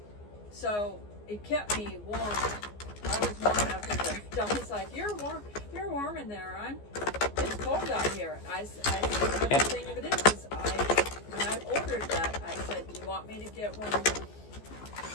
So it kept me warm. I was warm enough. And Donnie's like, "You're warm. You're warm in there. It's cold out here." I said, "The thing of it is when I ordered that, I said, do you want me to get one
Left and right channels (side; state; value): right; late; 14 ms